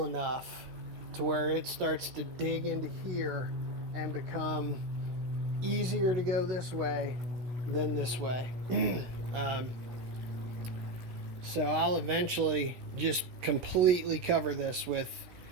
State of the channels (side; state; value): left; late; 16 ms